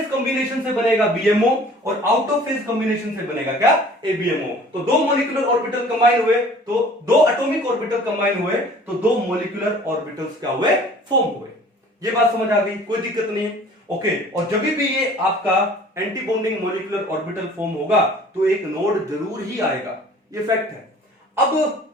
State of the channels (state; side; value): normal; both; correlation 0.49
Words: कॉम्बिनेशन से बनेगा BMO और आउट ऑफ फेज कॉम्बिनेशन से बनेगा क्या, ABMO। तो दो मॉलिक्यूलर ऑर्बिटल कंबाइन हुए, तो दो एटॉमिक ऑर्बिटल कंबाइन हुए, तो दो मॉलिक्यूलर ऑर्बिटल्स क्या हुए, फॉर्म हुए। ये बात समझ आ गई, कोई दिक्कत नहीं है, ओके। और जब भी ये आपका anti bonding molecular orbital form होगा तो एक नोड जरूर ही आएगा, ये फैक्ट है। अब